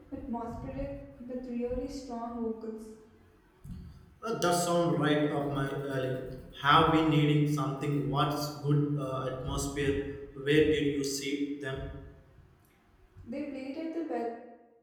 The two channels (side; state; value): both; identical; correlation 1.00